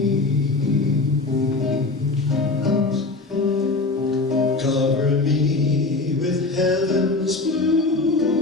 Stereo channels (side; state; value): right; quieter; 3.4 dB